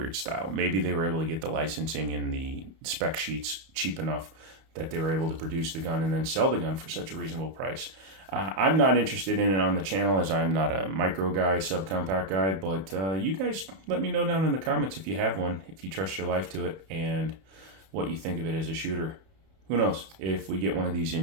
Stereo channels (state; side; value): late; left; 31 ms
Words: style. Maybe they were able to get the licensing and the spec sheets cheap enough that they were able to produce the gun and then sell the gun for such a reasonable price. I'm not interested in it on the channel, as I'm not a micro guy, subcompact guy, but you guys let me know down in the comments if you have one, if you trust your life to it, and what you think of it as a shooter. Who knows? If we get one of these